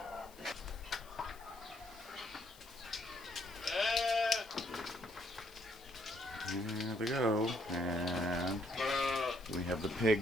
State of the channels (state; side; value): noise; left; hiss, 22 dB below the sound